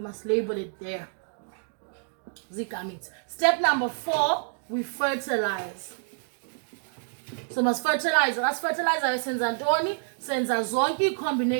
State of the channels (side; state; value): left; silent; digital silence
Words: must label it there. Gametes. Step number 4, we fertilize. So must fertilize. As fertilizer senza ntoni, senza zonke